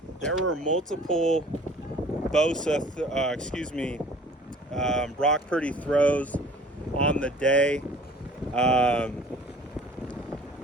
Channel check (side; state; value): both; normal; correlation 0.50